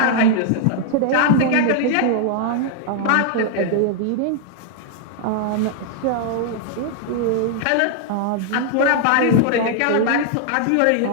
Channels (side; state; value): both; different; correlation -0.01